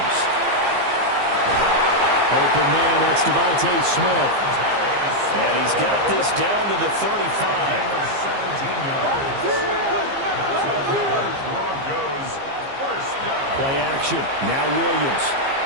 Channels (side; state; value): left; late; 15 ms